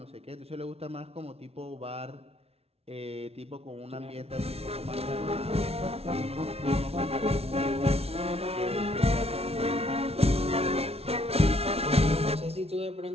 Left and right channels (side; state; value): left; late; 0.30 ms